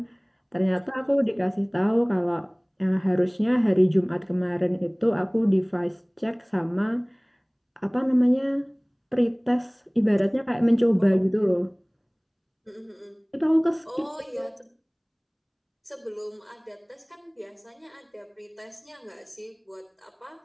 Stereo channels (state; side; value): identical; both; correlation 1.00